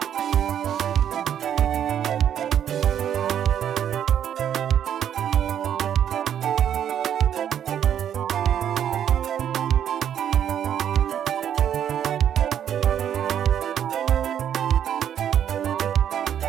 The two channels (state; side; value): quieter; left; 9.6 dB